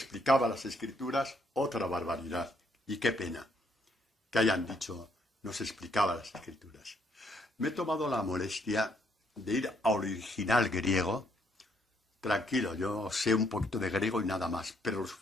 las escrituras? Otra barbaridad. Y qué pena que hayan dicho, nos explicaba las escrituras. Me he tomado la molestia de ir al original griego. Tranquilo, yo sé un poquito de griego y nada más, pero lo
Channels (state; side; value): normal; both; correlation 0.71